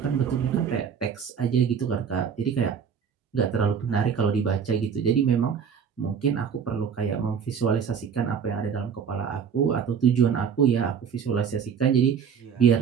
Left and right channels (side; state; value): left; quieter; 7.1 dB